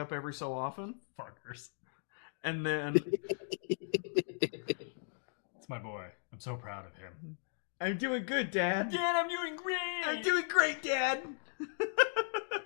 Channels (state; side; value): silent; right; digital silence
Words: every so often. Fuckers. And then it's my boy. I'm so proud of him. I'm doing good, Dad. Dad, I'm doing great. I'm doing great, Dad.